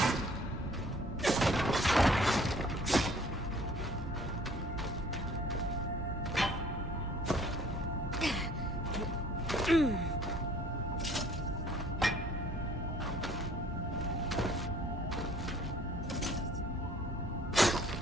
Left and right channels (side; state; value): both; normal; correlation 0.55